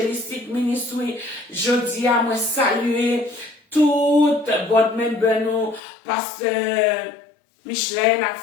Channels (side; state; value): right; drops out; at 5.8 s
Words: Ministry, je dis à moi saluer toute board member nous, pasteur Micheline, la